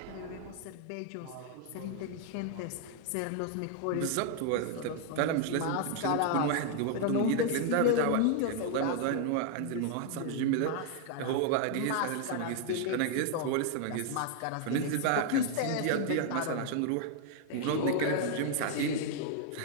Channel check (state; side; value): different; both; correlation 0.00